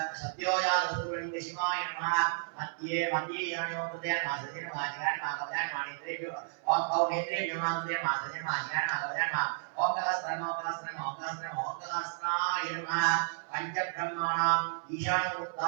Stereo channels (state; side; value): silent; left; 56 dB below the other